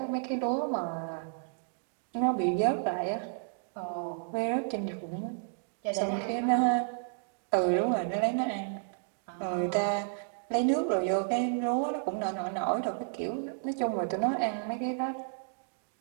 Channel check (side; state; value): left; silent; digital silence